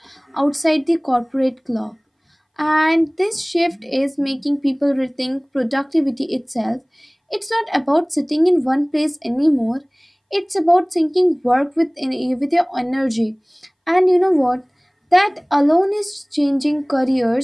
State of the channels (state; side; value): identical; both; correlation 1.00